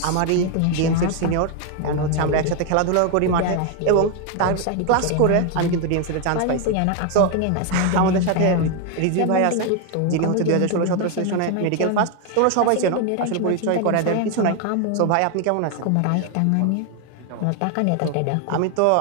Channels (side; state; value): both; different; correlation 0.01